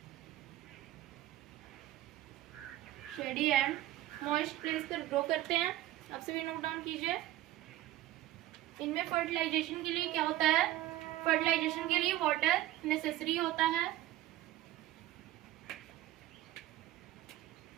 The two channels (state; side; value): quieter; left; 14.9 dB